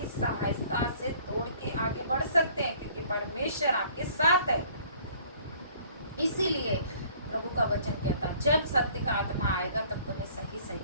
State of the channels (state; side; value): inverted; both; correlation -0.56